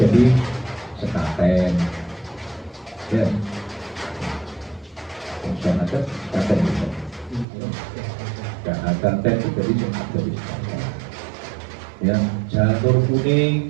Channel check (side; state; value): left; drops out; at 7.5 s